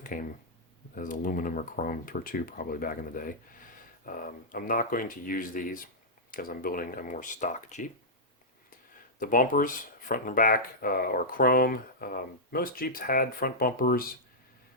came as aluminum or chrome or two probably back in the day. I'm not going to use these because I'm building a more stock Jeep. The bumpers, front and back, are chrome. Most Jeeps had front bumpers.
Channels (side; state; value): both; normal; correlation -0.10